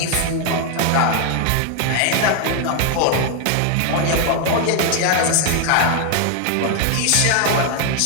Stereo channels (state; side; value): different; both; correlation 0.01